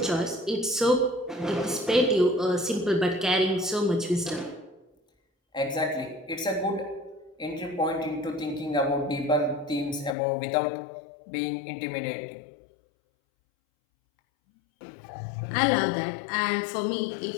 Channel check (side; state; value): right; drops out; at 10.2 s